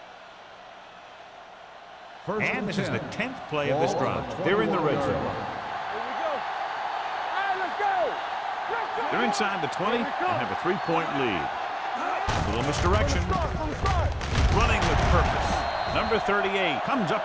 And this is the 10th play of this drive. They're in the red zone. Here we go. Hey, let's go. Let's go. They're inside the 20 and have a 3-point lead. A little misdirection. Running with purpose. Number 38 comes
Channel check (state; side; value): identical; both; correlation 1.00